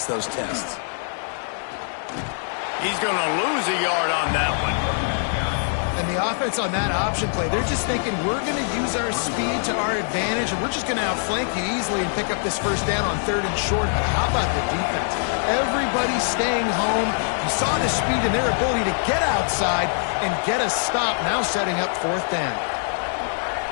those tests. He's going to lose a yard on that one. And the offense on that option play, they're just thinking we're going to use our speed to our advantage, and we're just going to outflank you easily and pick up this first down on 3rd and short. But how about the defense? Everybody's staying home. You saw the speed and their ability to get outside and get a stop, now setting up 4th down.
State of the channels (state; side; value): silent; right; digital silence